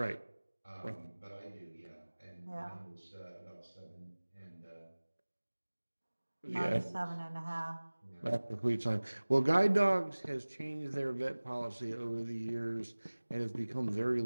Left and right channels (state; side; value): inverted; both; correlation -1.00